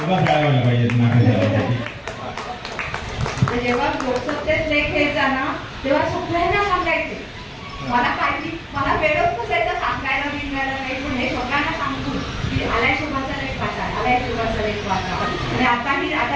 खेळायला पाहिजेत नाकाच्या. जेव्हा लोकसत्तेत लेख यायचा ना तेव्हा सगळ्यांना सांगायचे. मला वेळच नसायचं सांगायला बिंगायला काही, पण हे सगळ्यांना सांगतो की आलाय शुभाचा लेख वाचा, आलाय शुभाचा लेख वाचा. आणि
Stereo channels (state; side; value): identical; both; correlation 1.00